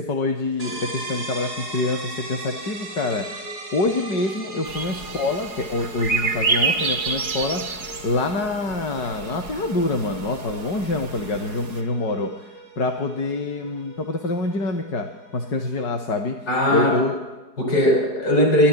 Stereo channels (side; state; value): right; late; 4.8 ms